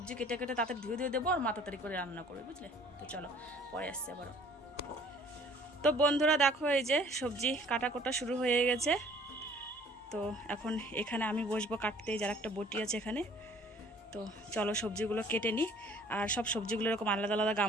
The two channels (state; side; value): normal; both; correlation 0.54